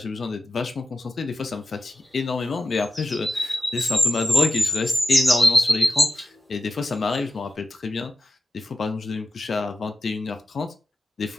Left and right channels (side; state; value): both; normal; correlation 0.92